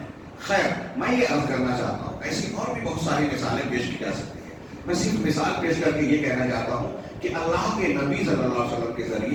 ہے. خیر، میں یہ عرض کرنا چاہتا ہوں، ایسی اور بھی بہت ساری مثالیں پیش کی جا سکتی ہیں. میں صرف مثال پیش کر کے یہ کہنا چاہتا ہوں کہ اللہ کے نبی صلی اللہ علیہ وسلم کے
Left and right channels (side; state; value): both; identical; correlation 1.00